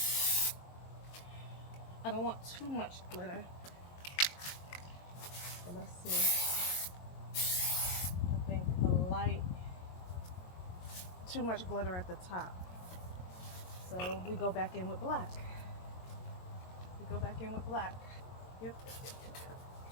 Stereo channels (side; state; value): right; late; 22 ms